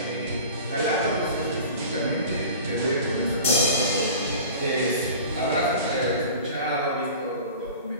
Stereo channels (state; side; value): inverted; both; correlation -0.39